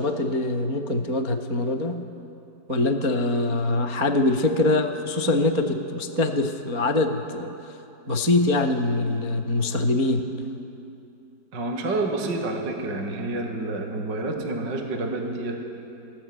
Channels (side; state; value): left; late; 4.4 ms